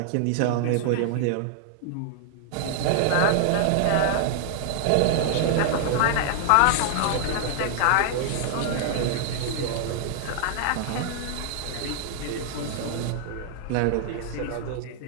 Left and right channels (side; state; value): both; different; correlation 0.00